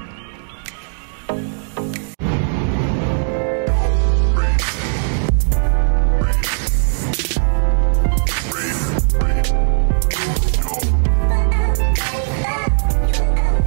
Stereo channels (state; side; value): silent; left; digital silence